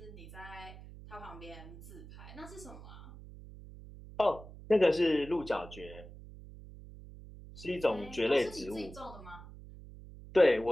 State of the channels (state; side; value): noise; right; hum, 16 dB below the sound